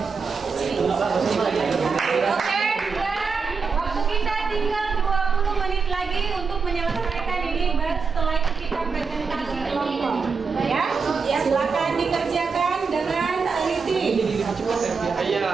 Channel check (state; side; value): quieter; left; 5.2 dB